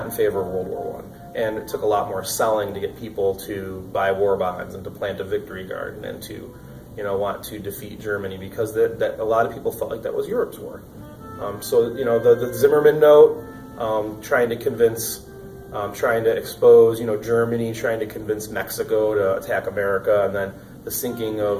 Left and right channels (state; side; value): identical; both; correlation 1.00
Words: in favor of World War I. And it took a lot more selling to get people to buy war bonds and to plant a victory garden and to, want to defeat Germany, because that a lot of people felt like that was Europe's war. The Zimmerman note, trying to expose, Germany, trying to convince Mexico to attack America, and then the sinking